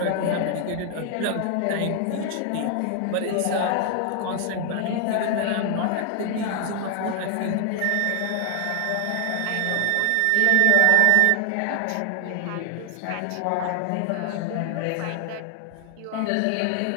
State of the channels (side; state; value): both; different; correlation 0.00